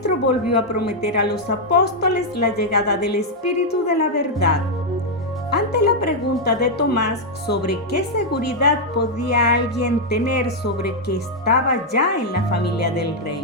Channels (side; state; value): both; normal; correlation -0.02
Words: volvió a prometer a los apóstoles la llegada del Espíritu de la verdad. Ante la pregunta de Tomás sobre qué seguridad podía alguien tener sobre que estaba ya en la familia del